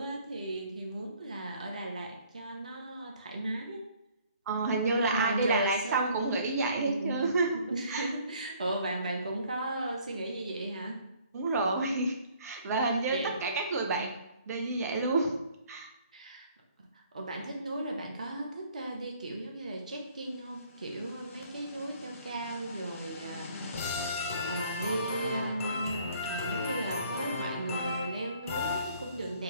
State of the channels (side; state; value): both; inverted; correlation -0.59